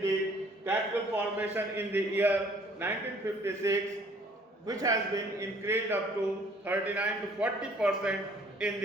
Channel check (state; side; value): normal; both; correlation 0.58